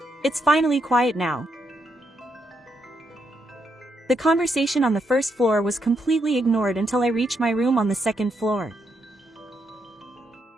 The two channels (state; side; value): normal; both; correlation 0.79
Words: It's finally quiet now. The conversation on the first floor was completely ignored until I reached my room on the second floor.